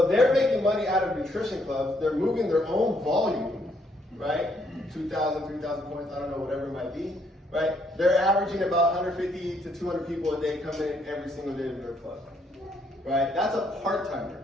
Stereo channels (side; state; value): both; normal; correlation 0.71